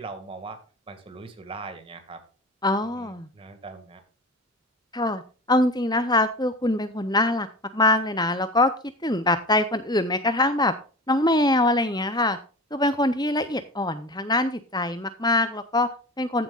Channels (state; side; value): normal; both; correlation 0.31